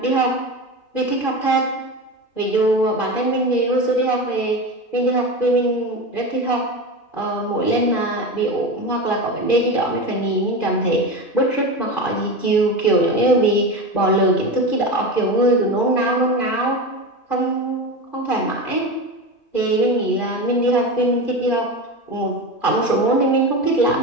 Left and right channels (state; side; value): late; right; 2.4 ms